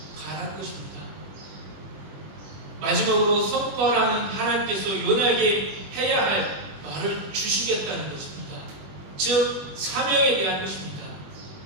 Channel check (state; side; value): late; left; 21 ms